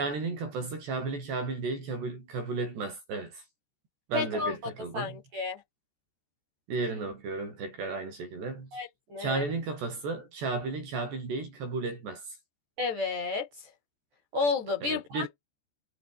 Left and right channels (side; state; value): left; late; 14 ms